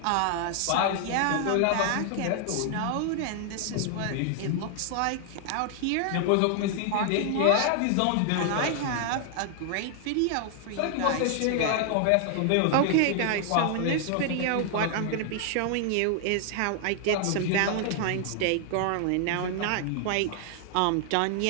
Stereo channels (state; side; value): different; both; correlation 0.00